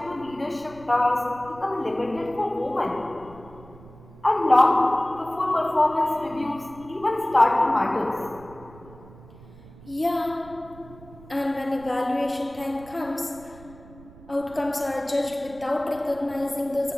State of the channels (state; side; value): noise; right; rumble, 20 dB below the sound